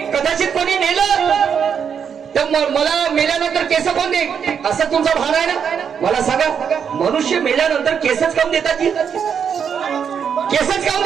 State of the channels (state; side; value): quieter; left; 7.3 dB